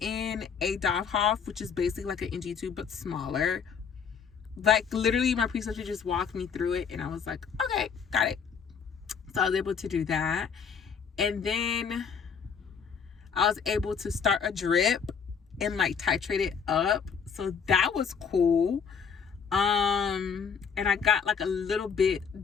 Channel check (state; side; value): quieter; right; 6.5 dB